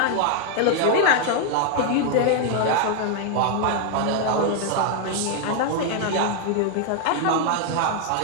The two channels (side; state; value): both; different; correlation 0.00